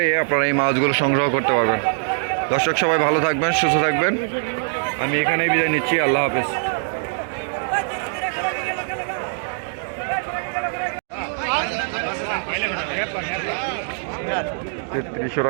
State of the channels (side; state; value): left; silent; digital silence